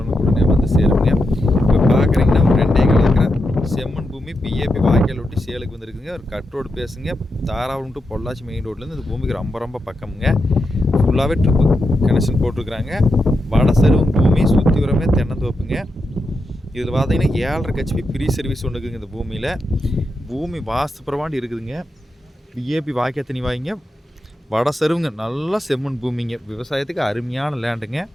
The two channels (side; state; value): both; normal; correlation 0.86